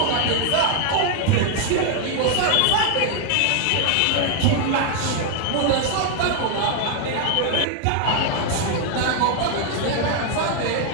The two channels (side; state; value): both; different; correlation 0.00